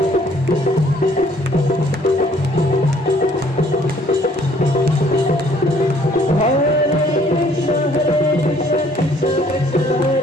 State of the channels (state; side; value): normal; both; correlation 0.61